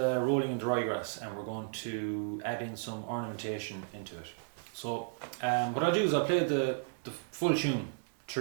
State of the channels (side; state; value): left; quieter; 36.4 dB